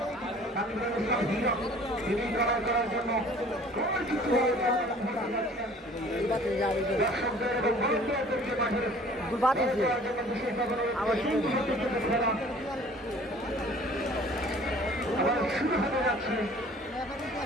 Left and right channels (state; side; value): normal; both; correlation 0.51